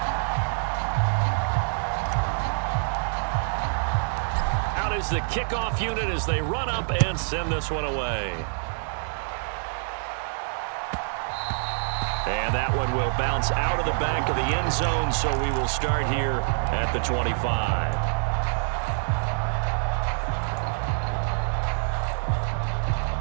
Out is the kickoff unit as they run up and send this one away. And that one will bounce out of the back of the end zone, so we will start here at the 25.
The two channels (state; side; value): silent; left; digital silence